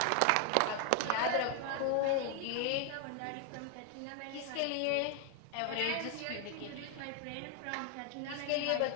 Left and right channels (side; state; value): both; different; correlation 0.00